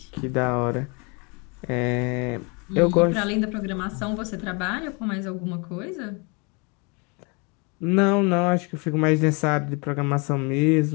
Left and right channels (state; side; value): quieter; right; 32.0 dB